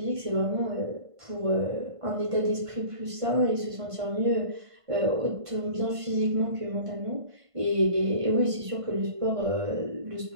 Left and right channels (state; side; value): late; left; 1.5 ms